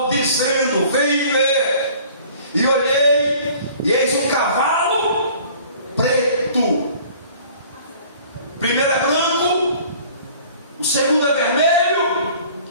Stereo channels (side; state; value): both; inverted; correlation -0.50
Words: dizendo: vem ver. E olhei, e eis um cavalo preto. Primeiro é branco, o segundo é vermelho,